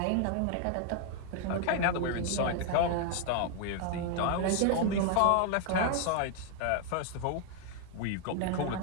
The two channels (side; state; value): both; different; correlation 0.00